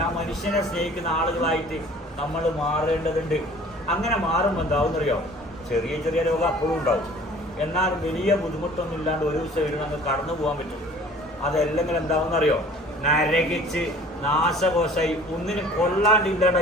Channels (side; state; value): both; normal; correlation 0.49